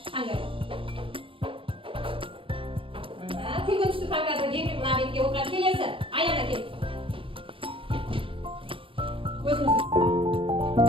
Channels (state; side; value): late; left; 0.25 ms